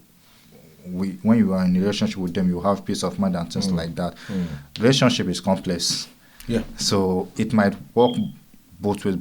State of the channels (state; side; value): identical; both; correlation 1.00